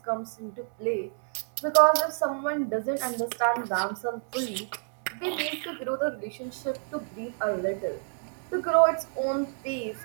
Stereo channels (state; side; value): silent; left; digital silence